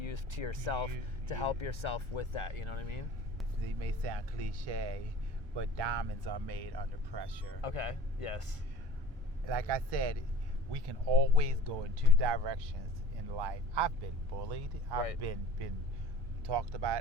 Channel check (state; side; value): normal; both; correlation 0.44